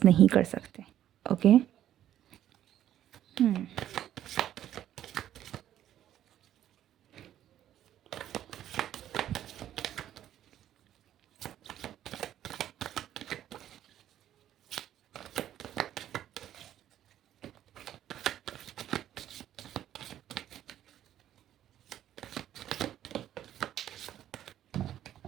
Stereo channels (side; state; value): left; quieter; 11.6 dB